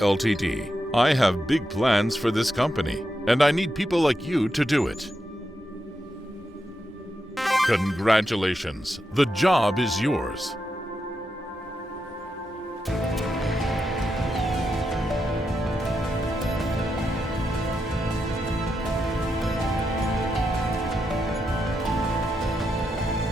I have big plans for this company, and I need people like you to do it. Congratulations, the job is yours.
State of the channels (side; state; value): both; normal; correlation 0.85